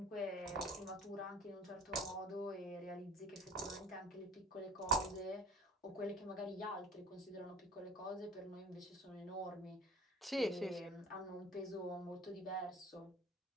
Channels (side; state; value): both; normal; correlation 0.43